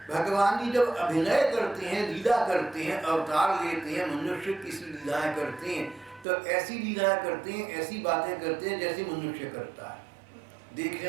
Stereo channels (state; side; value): drops out; left; at 6.2 s